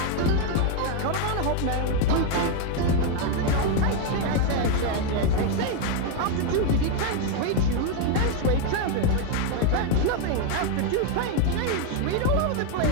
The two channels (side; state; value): both; different; correlation 0.01